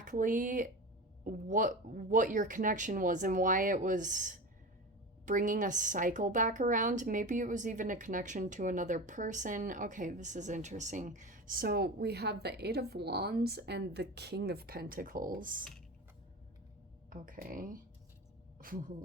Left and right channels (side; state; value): both; normal; correlation 0.28